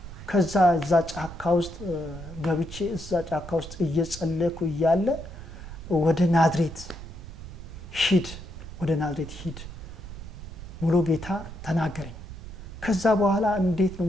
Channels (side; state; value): right; noise; rumble, 12 dB below the sound